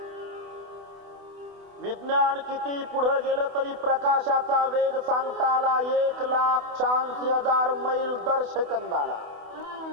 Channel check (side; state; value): left; late; 28 ms